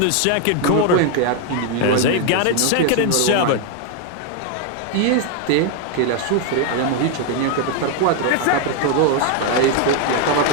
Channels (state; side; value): different; both; correlation 0.01